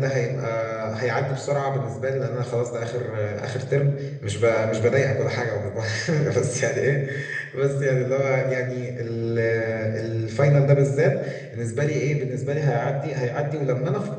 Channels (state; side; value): identical; both; correlation 1.00